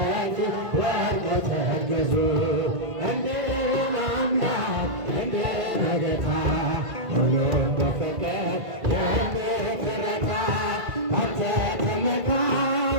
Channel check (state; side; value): late; left; 1.9 ms